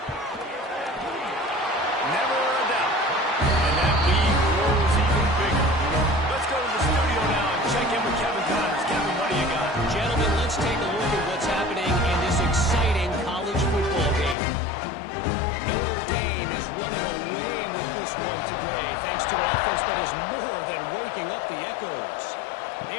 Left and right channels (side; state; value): right; drops out; at 14.4 s